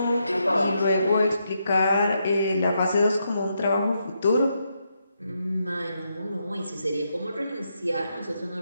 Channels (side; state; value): both; inverted; correlation -0.81